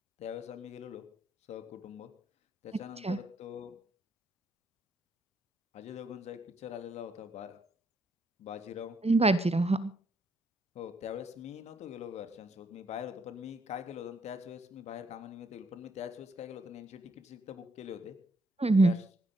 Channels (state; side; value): normal; both; correlation 0.73